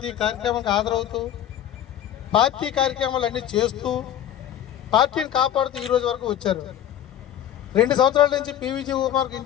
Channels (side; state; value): right; quieter; 10.9 dB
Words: కార్యక్రమానికి హాజరవుతూ పార్టీ కార్యక్రమాలు అన్నీ చేస్తూ పార్టీని కాపాడుతూ ఈ రోజు వరకు వచ్చారు. 2 సంవత్సరాల నుంచి పివిజి కుమార్కి